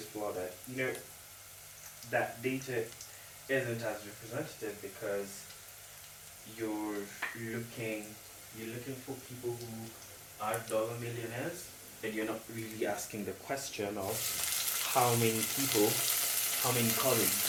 flaw that that data isn't as representative, because you're looking you're looking for people who are dollar millionaires, and you're not really asking the question of how many people, how many college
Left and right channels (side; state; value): both; identical; correlation 1.00